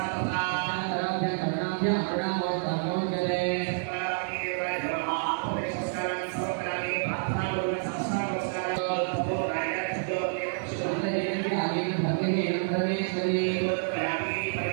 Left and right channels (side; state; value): left; silent; digital silence